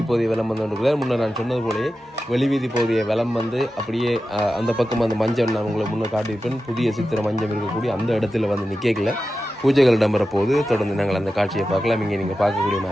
பகுதியை வலம் வந்து கொண்டிருக்கிறார். முன்னர் நான் சொன்னது போலயே வெளிவீதி பகுதியை வலம் வந்து அப்படியே அந்த பக்கம் அந்த மஞ்சள் நான் உங்களை முன்னே காட்டியிருப்பேன். புதிய சித்திர மஞ்சள் இருக்கக்கூடிய அந்த இடத்துல வந்து நிற்கல பூஜைகள் இடம்பெற போது தொடர்ந்து நாங்கள் அந்த காட்சியை பார்க்கலாம். இங்கே நீங்கள் பார்க்கக்கூடிய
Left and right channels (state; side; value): normal; both; correlation 0.92